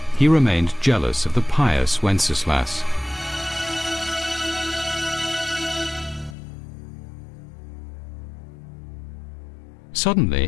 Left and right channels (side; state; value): right; drops out; at 6.4 s